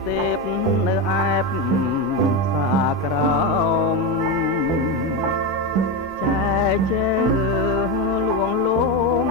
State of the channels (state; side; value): normal; both; correlation 0.14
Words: ទេពនៅអែបសាក្រោមចែជើលួងលោម